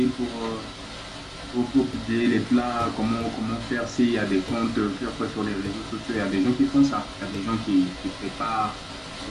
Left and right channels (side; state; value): both; identical; correlation 1.00